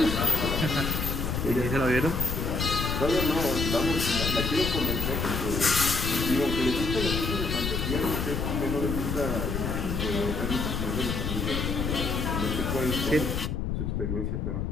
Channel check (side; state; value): left; noise; rumble, 1 dB below the sound